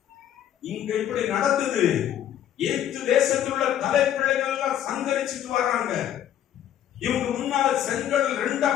இங்க இப்படி நடந்தது. ஏத்து தேசத்தில் உள்ள தலைப்பிள்ளைகள் எல்லாம் சங்கரிச்சுட்டு வர்றாங்க. இவங்க முன்னால செங்கல் 2ஆ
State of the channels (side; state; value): right; quieter; 10.7 dB